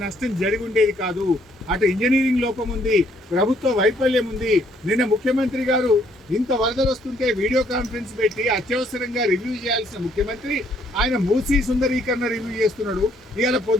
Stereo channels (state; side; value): normal; both; correlation 0.67